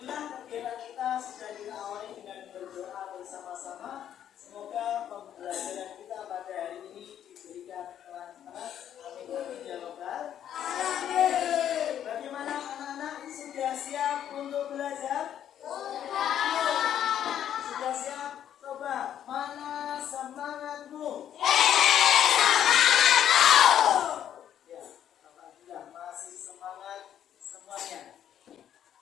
kegiatan kita sudah diawali dengan berdoa bersama-sama. Semoga pembelajaran kita pada hari ini diberikan kelancaran. Amin amin ya rabbal alamin. Bagaimana anak-anak, sudah siap untuk belajar? Sudah siap? Coba, mana semangatmu? Ya, alhamdulillah masih semangat semuanya.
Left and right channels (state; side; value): quieter; right; 10.1 dB